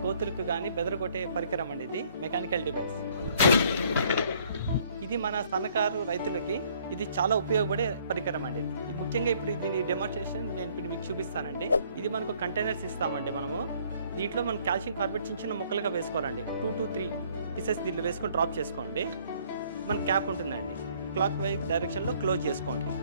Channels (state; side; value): inverted; both; correlation -0.62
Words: కోతులకు కానీ బెదరగొట్టే పరికరం అండి. ఇది మెకానికల్ డివైస్. ఇది మన సన్నకారు రైతులకి ఇది చాలా ఉపయోగపడే పరికరం అండి. ఇది ముఖ్యంగా ఇప్పుడు దీని డెమోన్స్ట్రేషన్ నేను ఇప్పుడు మీకు చూపిస్తానండి. ఇది మనకు కంటైనర్స్ ఇస్తామండి. మనము దీంట్లో మనం కాల్షియం కార్బోనేట్ చిన్న చిన్న ముక్కలుగా వేసుకోవాలండి. 2 to 3 పీసెస్ దీంట్లో వేసుకొని డ్రాప్ చేసుకోండి. మన క్యాప్ ఉంటుందండి. క్లాక్ వైజ్ డైరెక్షన్లో క్లోజ్ చేసుకోండి.